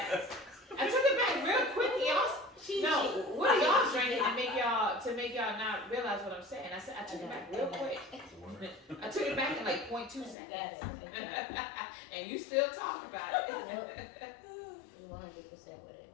I took it back real quick, y'all. No, what are y'all drinking to make y'all not realize what I'm saying? I said I took it back real quick. I took it back in like 0.2 seconds. And you still talk about it. 100% with it.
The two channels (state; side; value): drops out; right; at 10.4 s